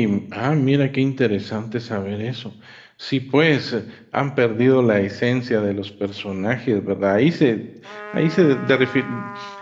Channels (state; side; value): identical; both; correlation 1.00